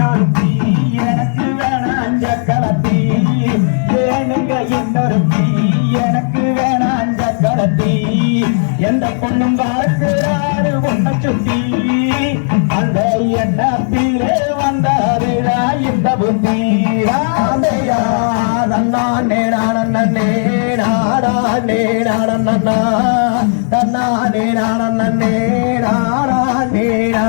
எனக்கு வேணாம் சக்கரத்தி ஏனுங்க இன்னொருத்தி எனக்கு வேணாம் சக்கரத்தி எந்த பொண்ணும் பார்க்கிறாரு உன்னை சுத்தி அந்த எண்ணத்திலே வந்தாருடா இந்த புத்தி ராமையா நன்னா நேரானே நாடா நேரானண்ணா தன்னா நேரானே நாடா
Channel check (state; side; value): silent; right; digital silence